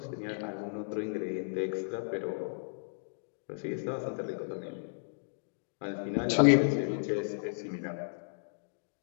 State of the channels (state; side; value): silent; right; digital silence